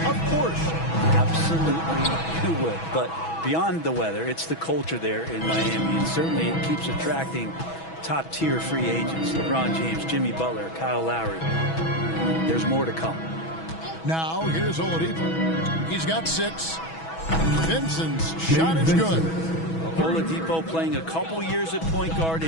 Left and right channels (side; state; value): right; late; 6.1 ms